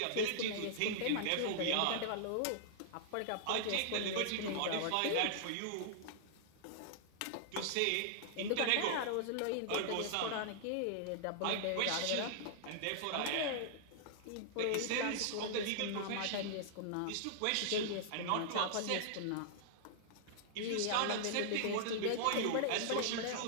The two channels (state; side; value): different; both; correlation -0.01